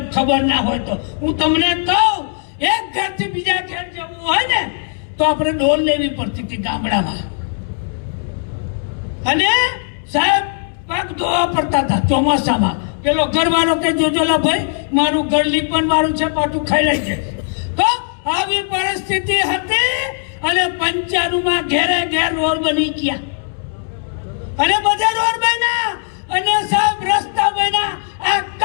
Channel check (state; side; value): silent; right; 67 dB below the other